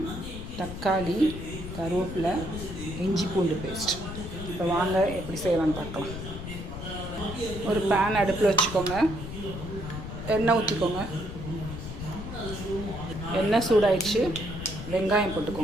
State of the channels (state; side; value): noise; left; rumble, 8 dB below the sound